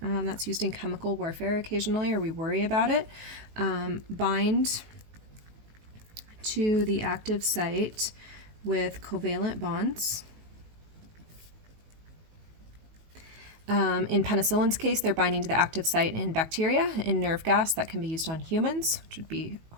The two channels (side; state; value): left; late; 19 ms